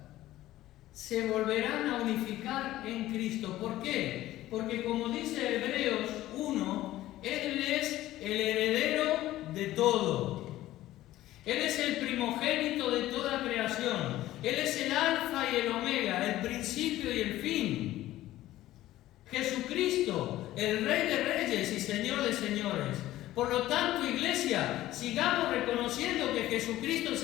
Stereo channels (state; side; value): quieter; right; 15.1 dB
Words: se volverán a unificar en Cristo. ¿Por qué? Porque como dice Hebreos 1, Él es el heredero de todo. Él es el primogénito de toda creación. Él es el alfa y el omega, el principio y el fin. Jesucristo, el Rey de Reyes y Señor de Señores. Por lo tanto, iglesia, sigamos reconociendo que Jesucristo